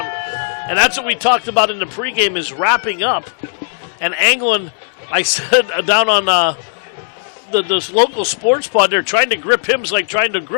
And that's what we talked about in the pregame is wrapping up. And Anglin, I said down on this local sports pod, they're trying to grip him. It's like trying to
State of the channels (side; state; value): right; silent; digital silence